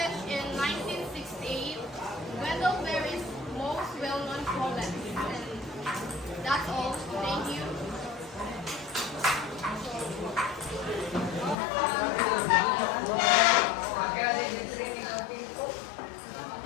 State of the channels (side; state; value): right; drops out; at 11.6 s